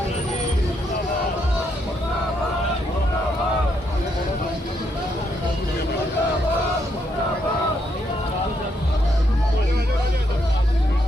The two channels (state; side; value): normal; both; correlation 0.76